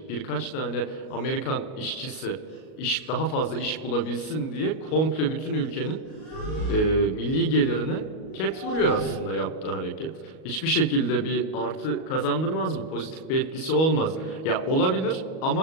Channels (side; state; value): right; late; 38 ms